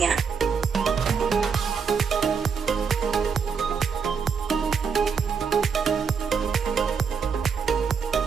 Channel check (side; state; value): left; quieter; 6.1 dB